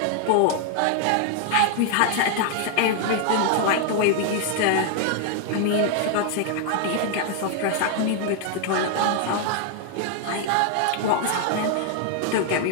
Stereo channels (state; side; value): different; both; correlation 0.00